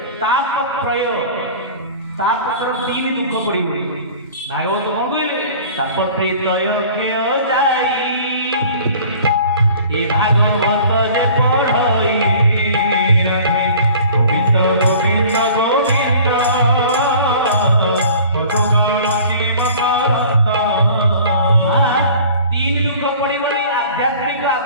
तापत्रय तापत्र तीन दुख पड़ोनी भागवत कौन कहले तापत्रय क्षय जाई ए भागवत जे पढ़ई रहे गोविंद गोविंद गोविंद मधुगण तीन दुख पड़े आध्यात्मिक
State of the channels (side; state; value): both; inverted; correlation -0.46